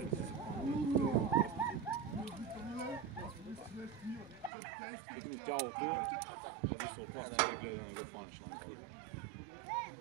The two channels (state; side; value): drops out; left; at 4.5 s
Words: не си се пълни. Тегни тялото, зависи от нас, да гледа да не го хванеш на това.